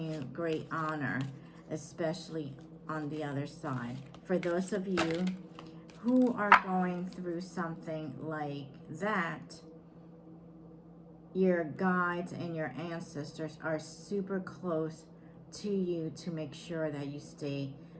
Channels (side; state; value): both; identical; correlation 1.00